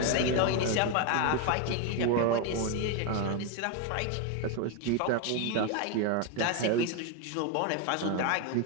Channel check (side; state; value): both; different; correlation 0.02